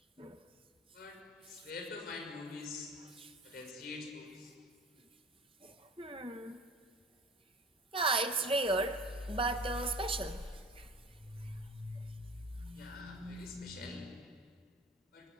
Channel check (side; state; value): both; normal; correlation 0.40